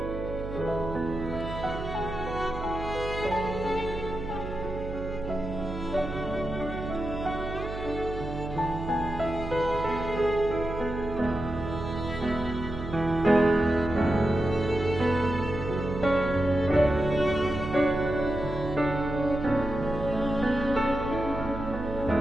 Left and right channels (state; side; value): noise; right; hum, 8 dB below the sound